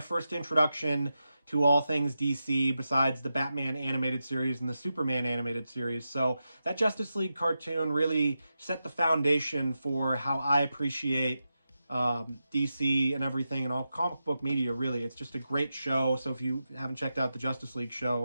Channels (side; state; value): both; inverted; correlation -0.90